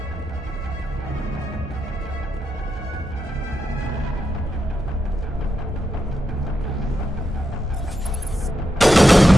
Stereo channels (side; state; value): both; normal; correlation 0.86